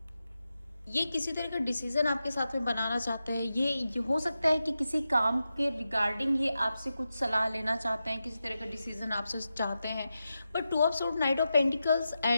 ये किसी तरह का डिसीजन आपके साथ में बनाना चाहते हैं। ये हो सकता है कि किसी काम के रिगार्डिंग ये आपसे कुछ सलाह लेना चाहते हैं, किसी तरह का डिसीजन आपसे चाहते हैं, but 2 of sword, night of pentacles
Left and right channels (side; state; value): both; inverted; correlation -0.90